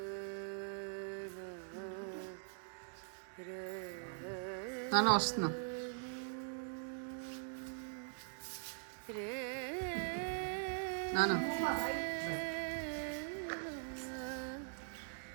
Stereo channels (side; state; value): left; silent; digital silence